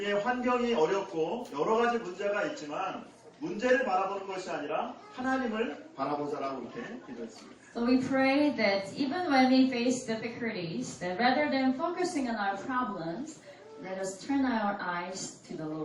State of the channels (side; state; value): both; identical; correlation 1.00